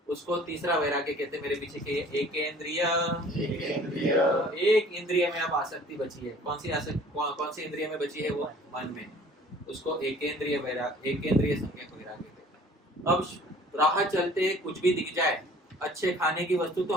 उसको तीसरा वैराग्य कहते हैं। मेरे पीछे के एक इंद्रिय में अब आसक्ति बची है। कौन सी इंद्रिय में बची है? वो मन में। उसको एकेंद्रिय संज्ञक वैराग्य कहते हैं। अब राह चलते कुछ भी दिख जाए, अच्छे खाने की वस्तु, तो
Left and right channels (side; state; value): both; normal; correlation 0.51